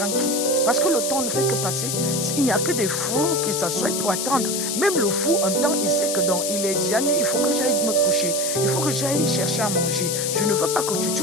qui? Parce que le temps ne fait que passer. Il n'y a que des fous qui s'assoient pour attendre. Même le fou, un temps, il sait que il est déjà nuit, il faut que j'aille me coucher. Il faut que j'aille chercher à manger. Je ne veux pas que tu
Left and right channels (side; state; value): left; noise; hiss, 2 dB below the sound